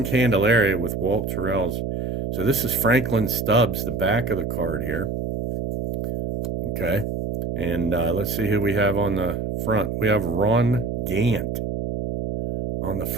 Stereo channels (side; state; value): right; noise; hum, 3 dB below the sound